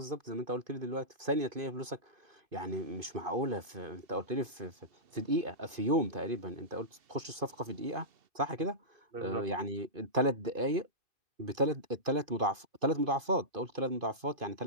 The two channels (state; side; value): late; left; 2.5 ms